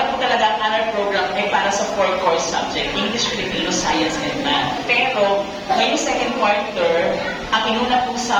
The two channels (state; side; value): identical; both; correlation 1.00